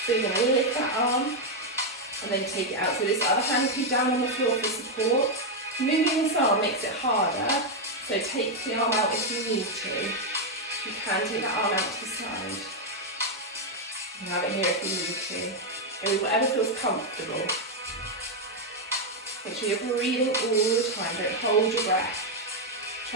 So you're going to lift that arm and then take it out. So this other hand will be down on the floor for support. Moving this arm makes it harder, so take the arm out if you need to. You can take that arm out to the side. You can have it here if you need to. Go with whatever feels comfortable. Make sure you're breathing all the time, don't hold your breath.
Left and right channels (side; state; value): both; normal; correlation 0.02